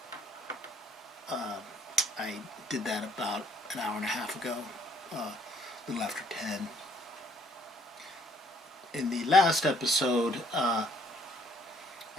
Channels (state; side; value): normal; both; correlation 0.63